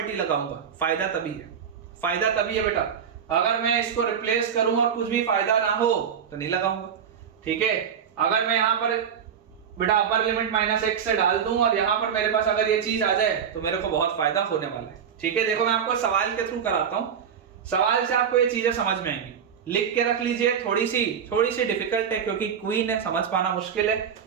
लगाऊंगा। फायदा तभी है बेटा, अगर मैं इसको रिप्लेस करूं और कुछ भी फायदा ना हो तो नहीं लगाऊंगा। ठीक है, अगर मैं यहां पर बेटा अपर लिमिट माइनस x से डाल दूं और यहां पर मेरे पास अगर ये चीज आ जाए तो मेरे को बहुत फायदा होने वाला है। ठीक है, देखो मैं आपको सवाल के थ्रू कराता हूं, सवाल से आपको ये चीजें समझ में आएंगी। लिख के रख लीजिए, थोड़ी सी डिफिकल्ट है क्योंकि क्वीन है, समझ पाना मुश्किल है,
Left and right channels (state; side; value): quieter; left; 7.7 dB